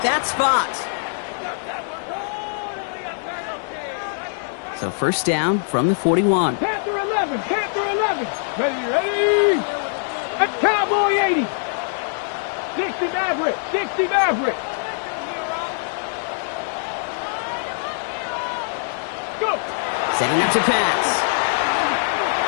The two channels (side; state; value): right; silent; digital silence